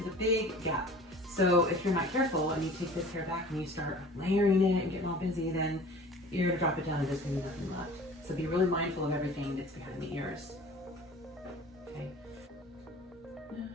a big gap. So if you're not careful and you take this hair back and you start layering it and getting all busy, then you're gonna drop it down and there's gonna be nothing left. So be really mindful of everything that's behind the ears. Okay. I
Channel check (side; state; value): both; normal; correlation 0.44